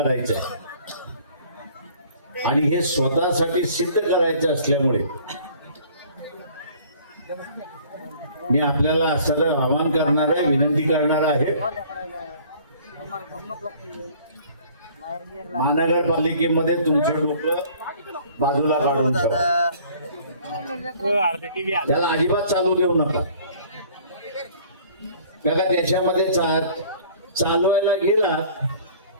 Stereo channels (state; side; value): inverted; both; correlation -0.53